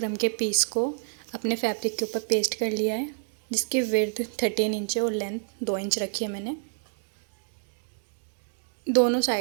के पीस को अपने फैब्रिक के ऊपर पेस्ट कर लिया है, जिसकी विड्थ 13 इंच है और लेंथ 2 इंच रखी है मैंने। दोनों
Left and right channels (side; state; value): left; silent; digital silence